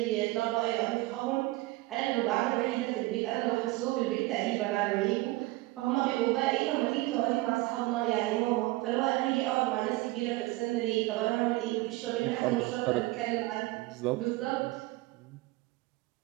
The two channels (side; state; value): left; quieter; 19.8 dB